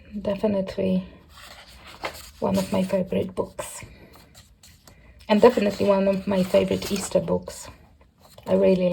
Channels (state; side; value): identical; both; correlation 1.00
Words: definitely one of my favorite books. And definitely one of my favorite Easter books. I really